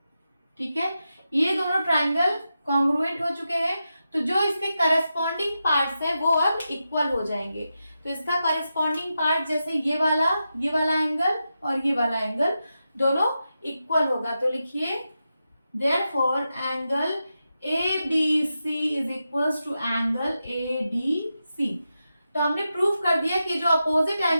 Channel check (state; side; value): inverted; both; correlation -0.89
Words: ठीक है, ये दोनों ट्राइंगल कॉन्ग्रुएंट हो चुके हैं, तो जो इसके करस्पॉन्डिंग पार्ट्स हैं वो अब इक्वल हो जाएंगे। तो इसका करस्पॉन्डिंग पार्ट जैसे ये वाला एंगल और ये वाला एंगल दोनों इक्वल होगा। तो लिखिए therefore angle ABC is equals to angle ADC। तो हमने प्रूव कर दिया कि जो अपोजिट